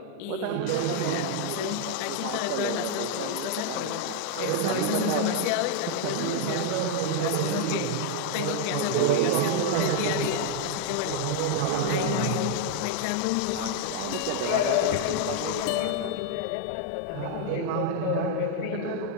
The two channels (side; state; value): both; different; correlation 0.00